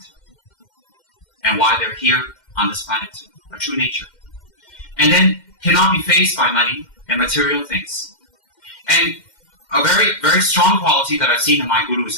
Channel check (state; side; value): late; right; 2.1 ms